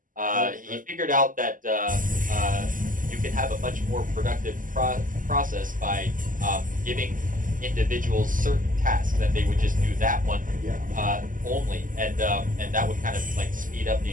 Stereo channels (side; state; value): left; late; 0.39 ms